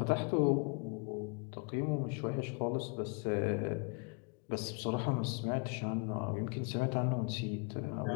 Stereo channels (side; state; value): right; quieter; 33.6 dB